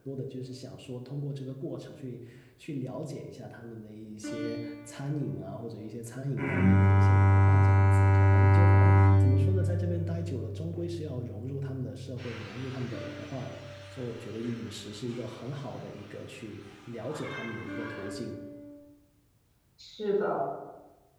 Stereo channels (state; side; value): identical; both; correlation 1.00